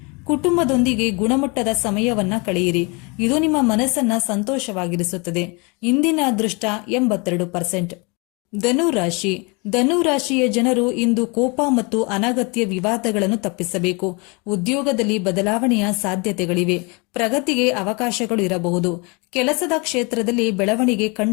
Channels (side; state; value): right; quieter; 29.8 dB